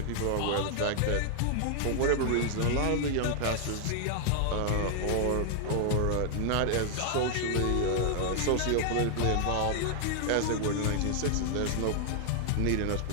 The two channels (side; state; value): both; different; correlation 0.00